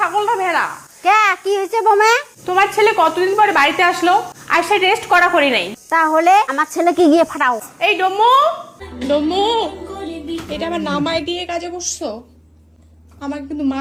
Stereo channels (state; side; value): identical; both; correlation 1.00